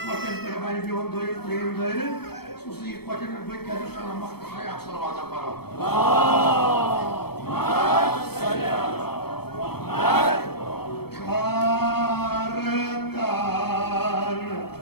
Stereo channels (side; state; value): right; late; 0.96 ms